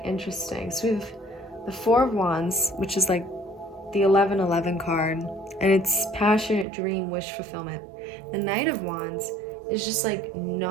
interesting. So we have the 4 of Wands, which is like the 11-11 card, and it's passionate dream, wish fulfillment. The Knight of Wands is just like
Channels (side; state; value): left; drops out; at 6.7 s